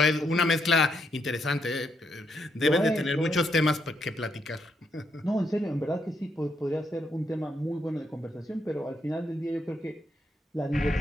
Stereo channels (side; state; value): both; normal; correlation 0.77